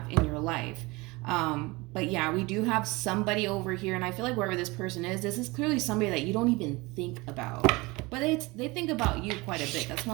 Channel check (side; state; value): left; quieter; 23.6 dB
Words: in your life. But yeah, we do have somebody over here, and I feel like wherever this person is, this is clearly somebody that you don't even think about. But they think about you quite a bit. That's